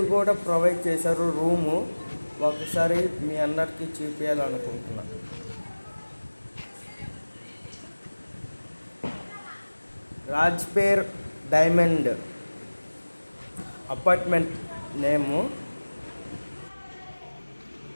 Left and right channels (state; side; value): inverted; both; correlation -1.00